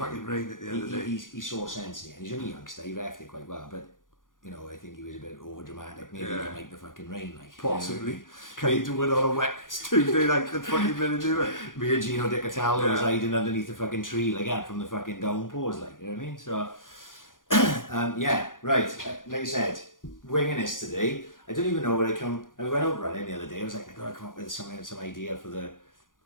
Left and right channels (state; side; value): late; right; 0.89 ms